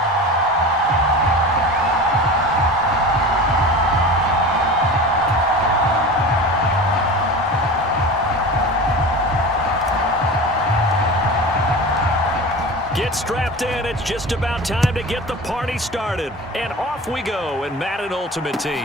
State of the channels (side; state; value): both; normal; correlation 0.32